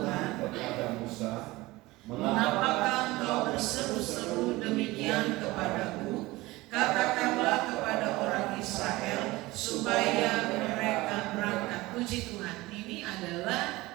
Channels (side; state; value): left; quieter; 20.1 dB